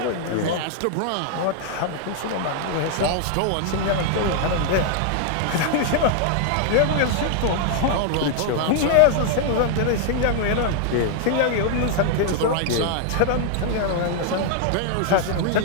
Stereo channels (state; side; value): different; both; correlation 0.00